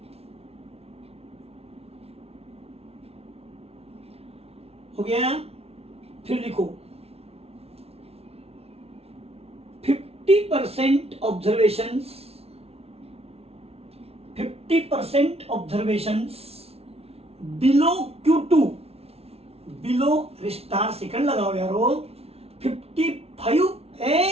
हो गया। फिर लिखो 50% observations, 50% observations below Q2, below star second लगाओ यारो।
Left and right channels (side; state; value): left; late; 0.30 ms